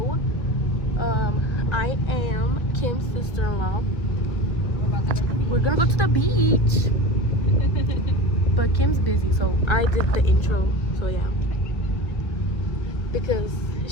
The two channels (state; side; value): late; right; 1.5 ms